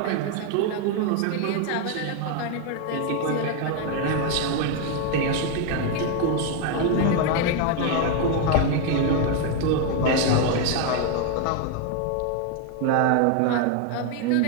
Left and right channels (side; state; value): both; different; correlation 0.01